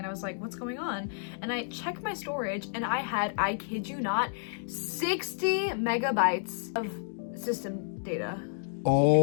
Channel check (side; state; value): right; silent; digital silence